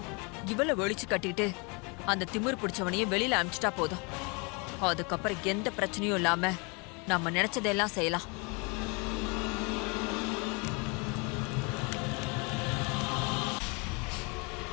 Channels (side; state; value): right; quieter; 31.1 dB